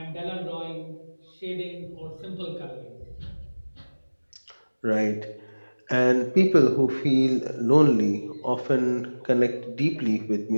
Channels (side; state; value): both; inverted; correlation -1.00